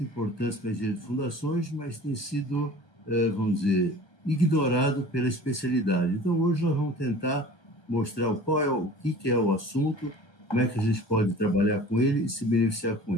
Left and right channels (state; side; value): late; right; 1.3 ms